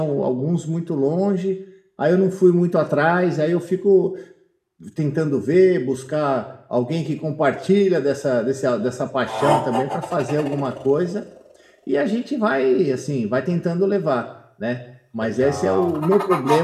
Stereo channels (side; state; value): both; identical; correlation 1.00